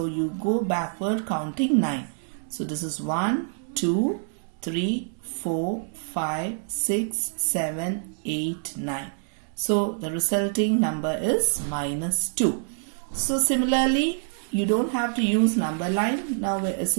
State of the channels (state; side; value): silent; left; digital silence